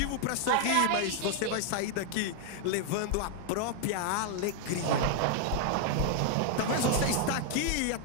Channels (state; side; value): different; both; correlation 0.00